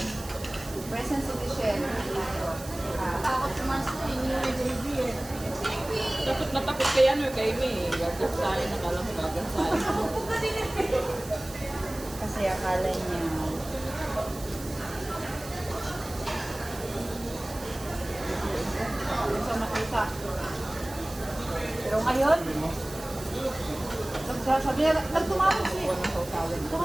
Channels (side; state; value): right; noise; hiss, 15 dB below the sound